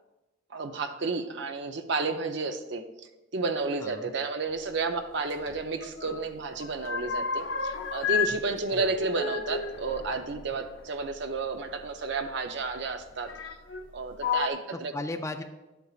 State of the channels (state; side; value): normal; both; correlation -0.10